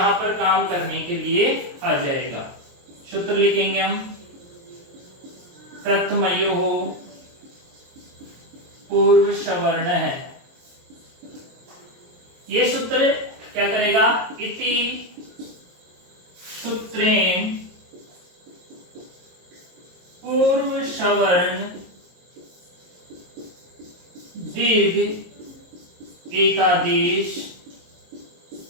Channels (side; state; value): left; late; 22 ms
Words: पर काम करने के लिए आ जाएगा। सूत्र लिखेंगे हम प्रथम योग पूर्व सवर्ण है। ये सूत्र क्या करेगा? इति सूत्रेण पूर्व सवर्ण दीर्घ एकादेश